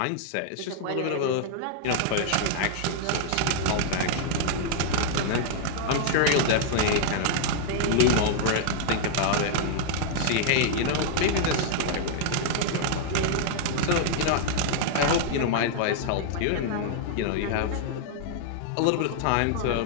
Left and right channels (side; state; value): both; different; correlation 0.00